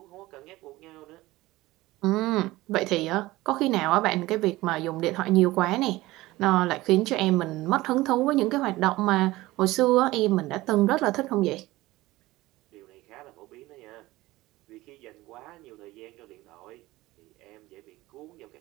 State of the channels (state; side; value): quieter; left; 18.6 dB